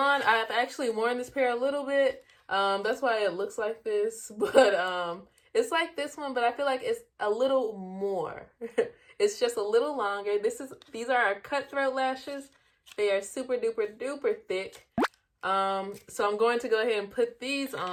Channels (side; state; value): both; identical; correlation 1.00